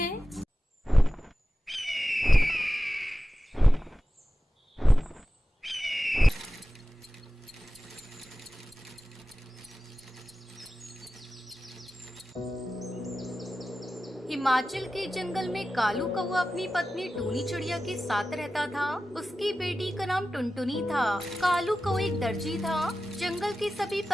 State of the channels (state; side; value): normal; both; correlation 0.94